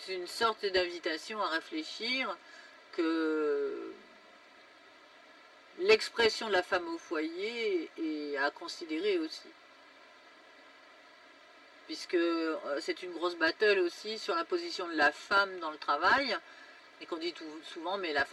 une sorte d'invitation à réfléchir que l'expression de la femme au foyer est à considérer aussi. Puisque c'est une grosse battle aussi sur la position de la femme dans le travail, et qu'on dit souvent, mais la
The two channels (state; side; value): identical; both; correlation 1.00